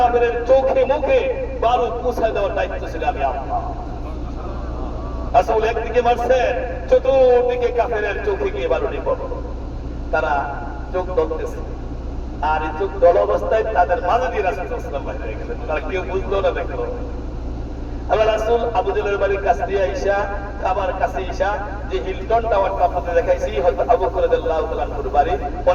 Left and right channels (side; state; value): both; identical; correlation 1.00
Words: চোখে মুখে বালু পৌঁছায় দেওয়ার দায়িত্ব ছিল আমি আপনার। রাসূল একদিকে মারছেন, চতুর্দিকে কাফেরের চোখে গিয়ে বালু নিক্ষেপ, তারা চোখ দলতেছে, আর এই চোখ দল অবস্থায় তাদের মাঝে দিয়ে রাসূল সাল্লাল্লাহু আলাইহি ওয়াসাল্লাম বাইরে হয়ে গেলেন, তারা কেউ বুঝলো না দেখলো। আল্লাহ রাসূল আবু জেলের বাড়ির কাছ দিয়ে আইসা, কাবার কাছে আইসা যে হিলটন টাওয়ারটা আপনাদের দেখাইছি, হযরত আবু বকর রাদিয়াল্লাহু তাআলা আনহুর বাড়ি,